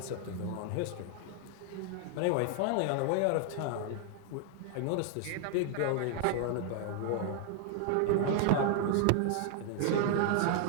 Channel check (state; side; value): different; both; correlation 0.00